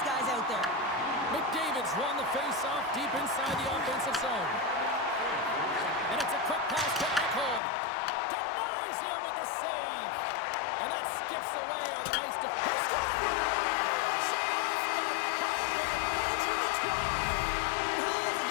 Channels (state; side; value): drops out; right; at 7.6 s